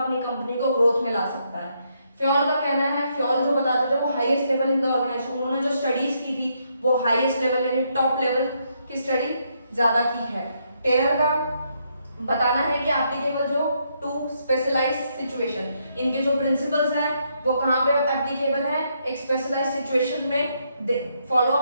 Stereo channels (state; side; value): inverted; both; correlation -0.76